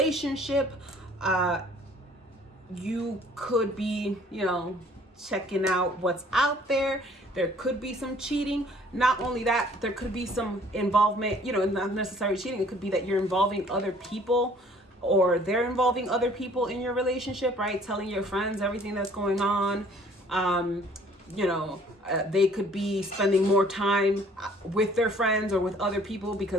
you could be, checking out what's out there. There could be some cheating. Not only that, there could be some involvement, not necessarily cheating. It could be that you're involving other people, or they're involving other people in your relationship, right? Telling your friends everything that's going on. They could be spending more time with their friends or with other people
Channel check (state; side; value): normal; both; correlation 0.56